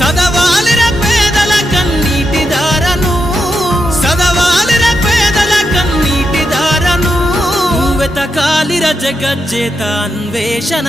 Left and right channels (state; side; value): normal; both; correlation 0.85